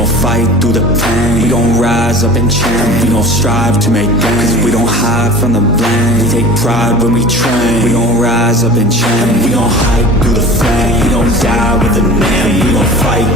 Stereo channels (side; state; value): both; normal; correlation 0.38